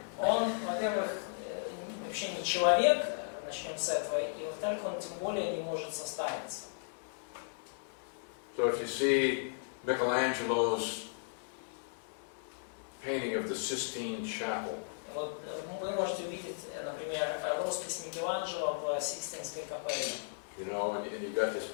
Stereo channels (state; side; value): silent; right; digital silence